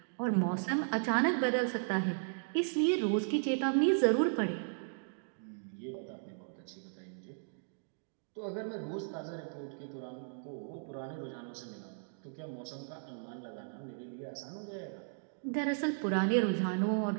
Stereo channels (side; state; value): left; silent; digital silence